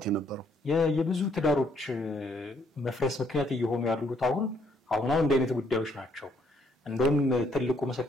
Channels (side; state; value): both; normal; correlation 0.70